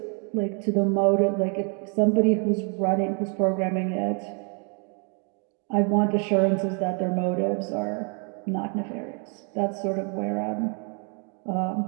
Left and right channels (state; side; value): quieter; left; 38.5 dB